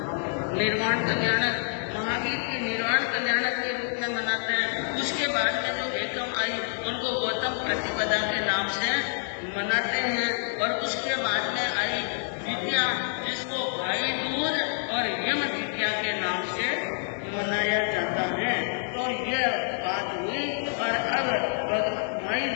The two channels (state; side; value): silent; right; 60 dB below the other